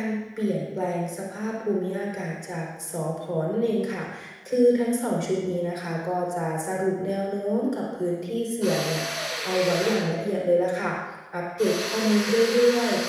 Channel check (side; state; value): both; identical; correlation 1.00